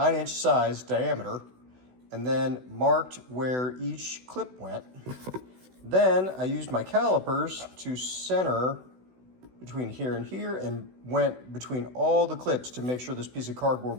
size diameter, and then marked where each clip went. Then I used my calipers to center between here and here and went between all the clips to make sure this piece of cardboard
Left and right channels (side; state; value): left; late; 16 ms